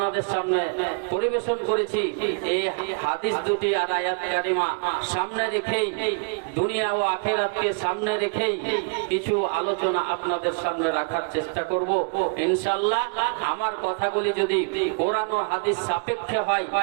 সামনে পরিবেশন করেছি। এই হাদিস দুটি আর আয়াত কারিমা সামনে রেখেই, দুনিয়া ও আখিরাতকে সামনে রেখেই কিছু আলোচনা আপনাদের সামনে রাখার চেষ্টা করব ইনশাআল্লাহ। আমার কথাগুলি যদি কোরআন ও হাদিস সাপেক্ষে হয়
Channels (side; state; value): left; quieter; 39.6 dB